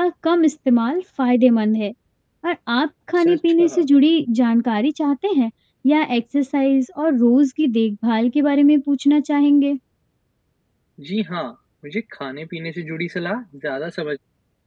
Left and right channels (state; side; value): identical; both; correlation 1.00